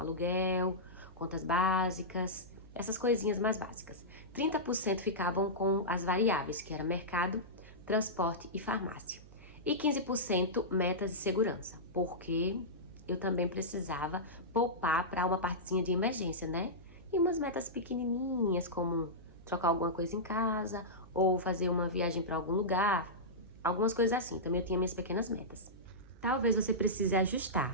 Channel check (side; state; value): right; noise; hum, 20 dB below the sound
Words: contas básicas, essas coisinhas mais básicas. 30% ficavam com as variáveis, que era mercado, transporte e farmácia. E 15% metas de segurança, porque eu também precisava poupar para uma partezinha de emergência, né? E umas metas pequenininhas, como trocar alguma coisa em casa, ou fazer uma viagem para algum lugar, algumas coisas assim. Também eu tinha minhas pequenas metas. Talvez você precise